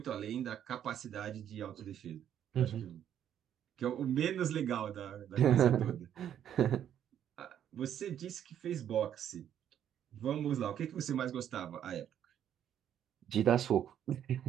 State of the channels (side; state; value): left; quieter; 10.0 dB